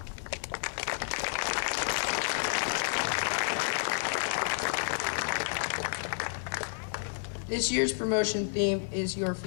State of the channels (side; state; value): right; silent; digital silence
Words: This year's promotion theme is Your